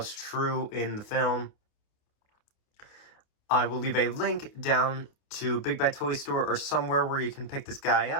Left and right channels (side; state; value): right; late; 28 ms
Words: true in the film. I will leave a link down to Big Bad Toy Store or somewhere where you can pick this guy